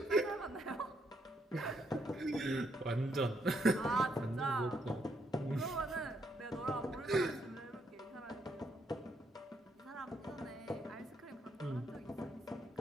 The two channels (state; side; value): normal; both; correlation 0.75